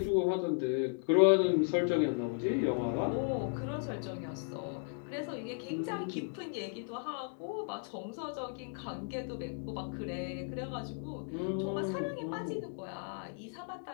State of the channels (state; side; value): silent; right; 54 dB below the other